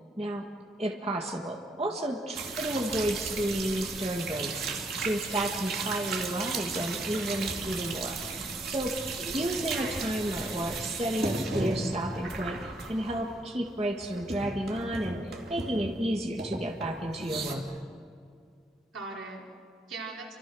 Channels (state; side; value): normal; both; correlation 0.72